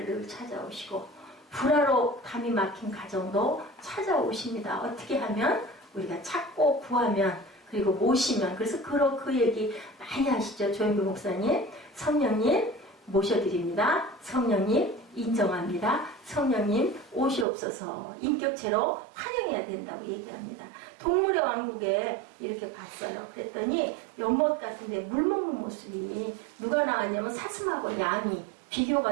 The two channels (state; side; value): drops out; left; at 17.4 s